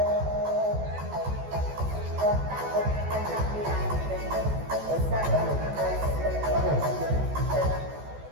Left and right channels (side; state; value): left; late; 14 ms